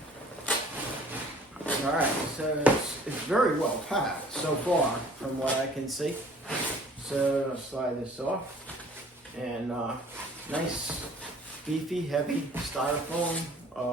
All right, so it's very well packed so far from what I can see. So I'll slide this off, and nice, beefy, heavy styrofoam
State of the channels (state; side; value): normal; both; correlation 0.53